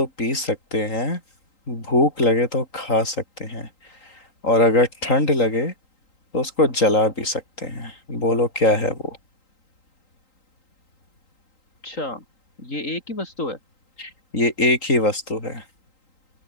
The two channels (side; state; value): right; late; 3.8 ms